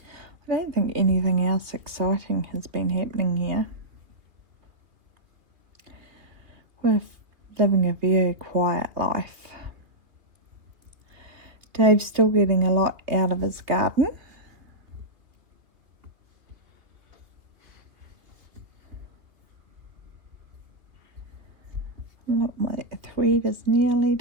I don't think anything else exciting has been happening here. We're living a very quiet life. Dave's still getting a lot out of his garden. Look, my thread is nearly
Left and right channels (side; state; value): left; late; 2.8 ms